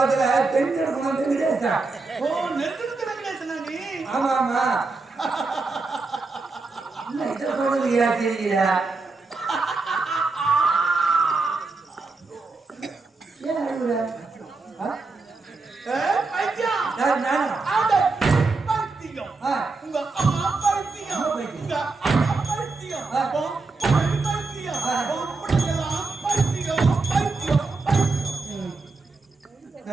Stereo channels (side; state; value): left; quieter; 3.8 dB